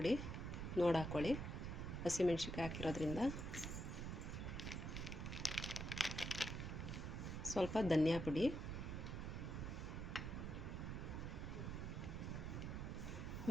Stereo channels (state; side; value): noise; right; rumble, 4 dB below the sound